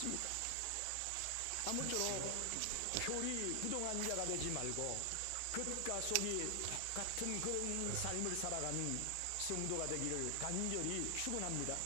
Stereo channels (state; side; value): different; both; correlation 0.00